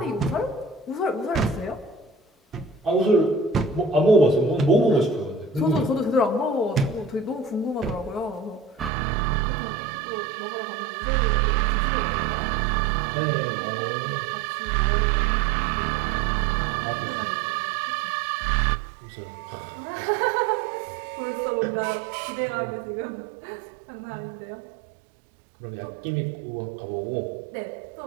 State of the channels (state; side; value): drops out; left; at 8.9 s